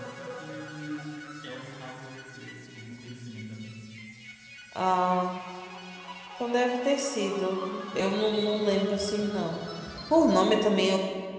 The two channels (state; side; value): identical; both; correlation 1.00